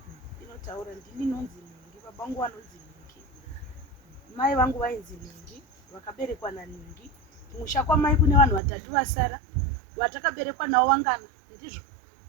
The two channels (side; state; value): left; drops out; at 8.6 s